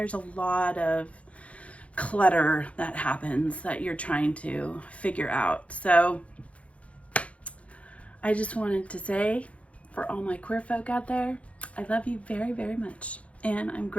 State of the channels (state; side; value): late; right; 0.064 ms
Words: a lot of clutter that happens that you're trying to figure out. So I just wanted to say, for all my queer folk out there, I love you very, very much. And I'm